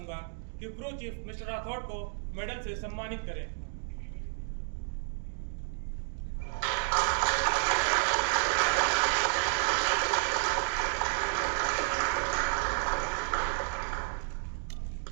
कि क्रू चीफ मिस्टर राठौड़ को मेडल से सम्मानित करें।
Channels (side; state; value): left; silent; 57 dB below the other